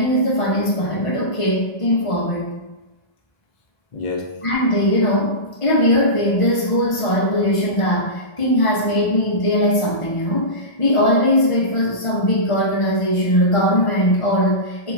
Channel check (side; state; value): right; late; 1.5 ms